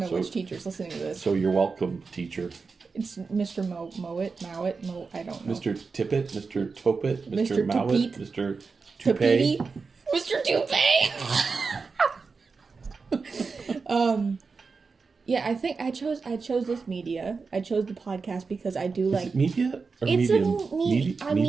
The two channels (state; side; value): quieter; left; 4.7 dB